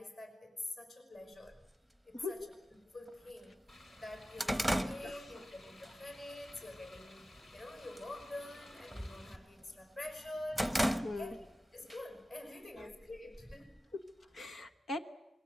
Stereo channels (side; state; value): both; normal; correlation 0.95